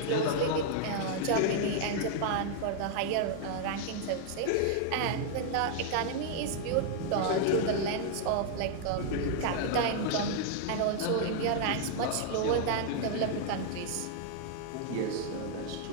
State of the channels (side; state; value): both; different; correlation -0.01